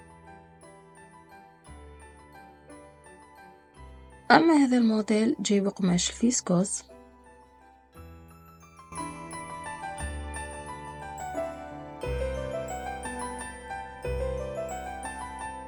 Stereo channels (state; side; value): identical; both; correlation 1.00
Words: أما هذا الموديل جاي بقماش الفيسكوس.